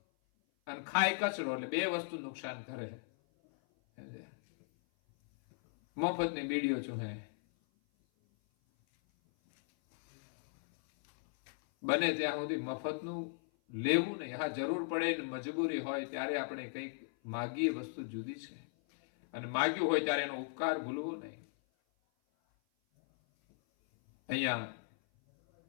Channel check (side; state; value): right; silent; 53 dB below the other